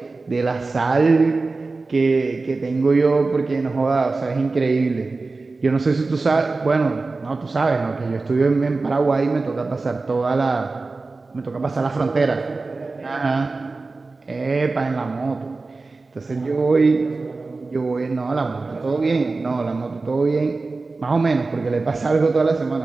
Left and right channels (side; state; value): left; quieter; 3.7 dB